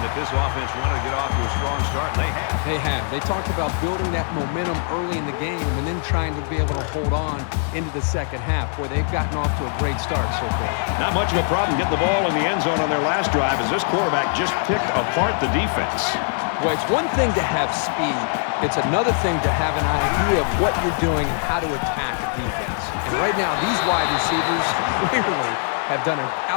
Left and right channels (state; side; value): silent; right; 58 dB below the other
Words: this offense wanted to get off to a strong start, and they have. They have. They talked about building that momentum early in the game and then trying to be able to hold on into the second half, where they've gotten off to a great start so far. Not much of a problem getting the ball in the end zone on their last drive, as this quarterback just picked apart the defense. Well, it's one thing to have speed. It's another thing to have an idea of what you're doing and how to attack a defense. And right now, these wide receivers clearly have done an